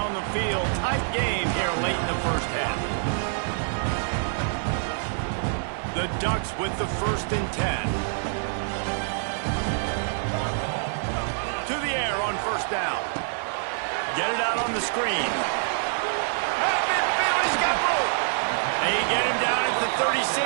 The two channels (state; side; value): silent; left; digital silence